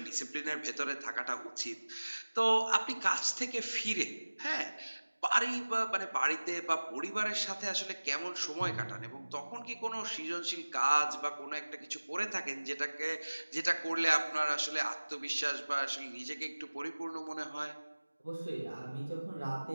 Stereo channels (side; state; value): both; inverted; correlation -1.00